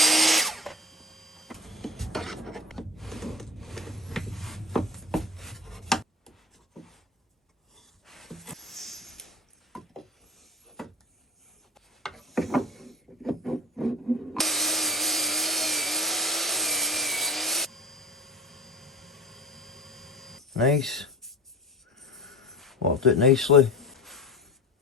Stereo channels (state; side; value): normal; both; correlation 0.34